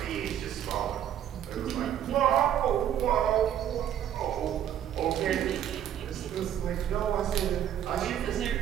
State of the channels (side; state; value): left; quieter; 10.4 dB